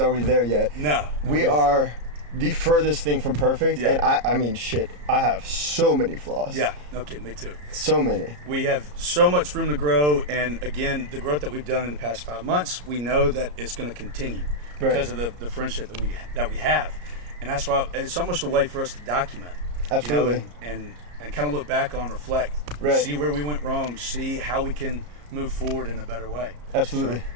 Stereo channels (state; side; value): late; left; 34 ms